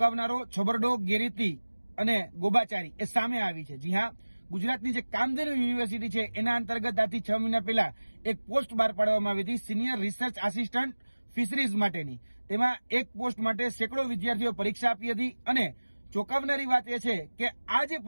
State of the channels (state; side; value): inverted; both; correlation -1.00